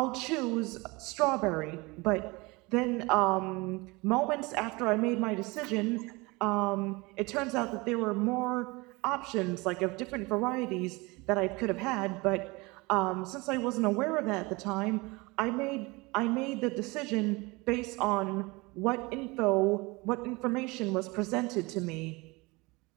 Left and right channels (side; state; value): left; quieter; 24.6 dB